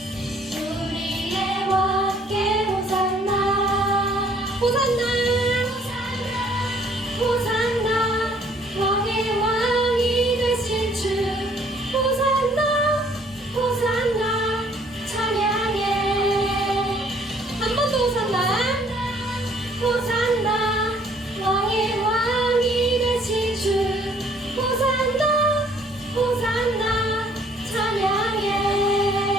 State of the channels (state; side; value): normal; both; correlation 0.61